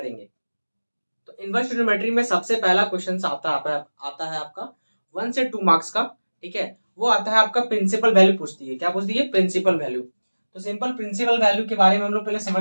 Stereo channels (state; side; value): inverted; both; correlation -1.00